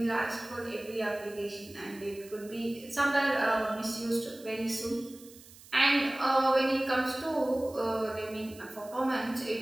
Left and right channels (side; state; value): right; noise; hiss, 21 dB below the sound